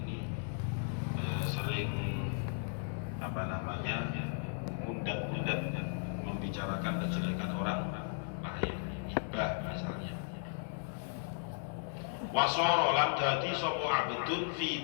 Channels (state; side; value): silent; right; 54 dB below the other